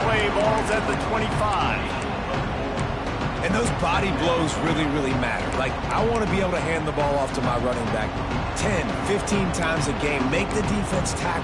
play. Ball's at the 25. And those body blows really, really matter. Like, I want to be able to hand the ball off to my running back 10, 15 times a game. Make the defense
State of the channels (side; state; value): both; identical; correlation 1.00